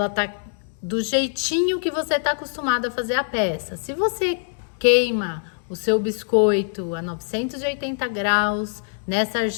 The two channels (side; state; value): right; silent; 58 dB below the other